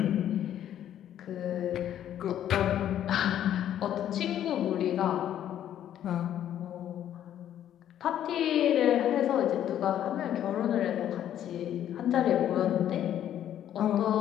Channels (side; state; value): right; quieter; 10.9 dB